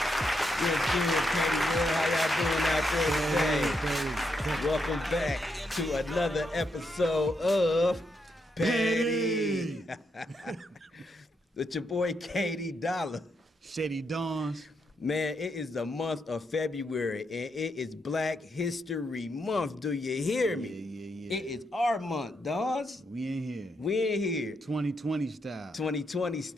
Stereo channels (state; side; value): normal; both; correlation 0.80